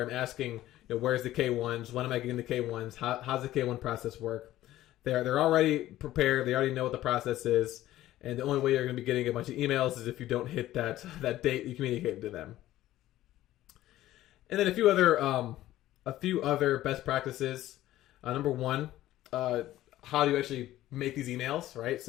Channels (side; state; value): right; quieter; 14.6 dB